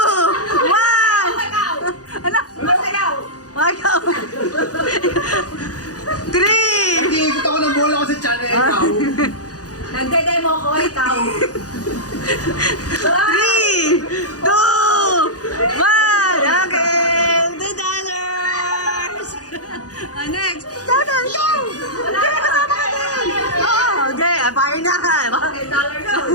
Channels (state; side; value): late; right; 0.67 ms